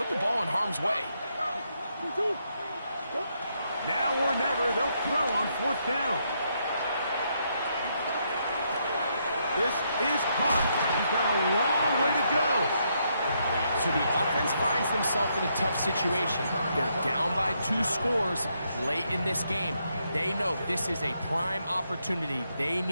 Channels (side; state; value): both; inverted; correlation -0.77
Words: the ball in harm's way. Now or never, they'll throw on fourth down. This is caught. He's got a long way to go. So the offense finds themselves in a tough situation. They're down by 2 scores late in this game. They know this is a prime opportunity. They